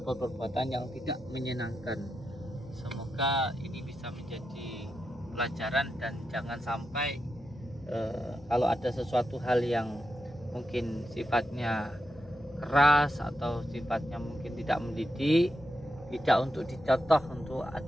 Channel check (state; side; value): normal; both; correlation 0.87